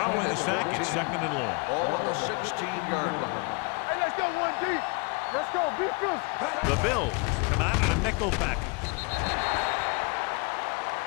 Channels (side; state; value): right; quieter; 30.5 dB